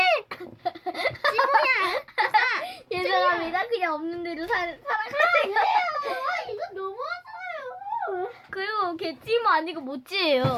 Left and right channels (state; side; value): identical; both; correlation 1.00